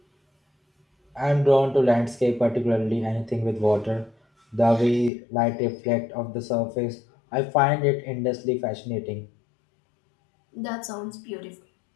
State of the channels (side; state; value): right; drops out; at 5.1 s